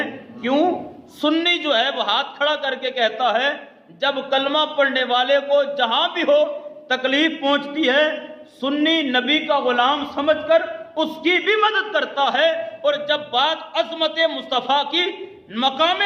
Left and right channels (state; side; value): identical; both; correlation 1.00